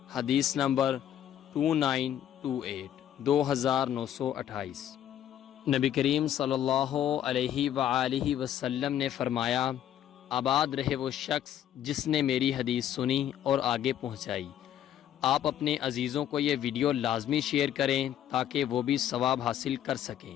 حدیث نمبر 2928 2928۔ نبی کریم صلی اللہ علیہ وآلہ وسلم نے فرمایا، آباد رہے وہ شخص جس نے میری حدیث سنی اور آگے پہنچائی۔ آپ اپنے عزیزوں کو یہ ویڈیو لازمی شیئر کریں تاکہ وہ بھی ثواب حاصل کر سکیں۔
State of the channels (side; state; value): right; quieter; 10.9 dB